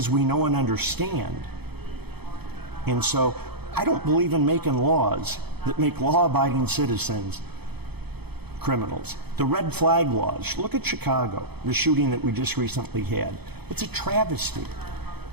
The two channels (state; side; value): late; left; 0.97 ms